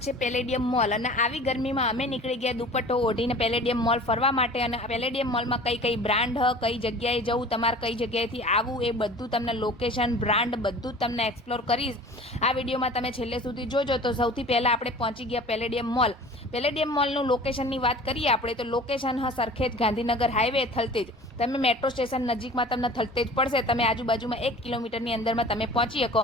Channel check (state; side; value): normal; both; correlation 0.43